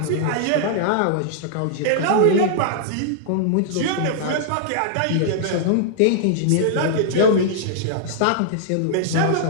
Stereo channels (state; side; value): different; both; correlation -0.01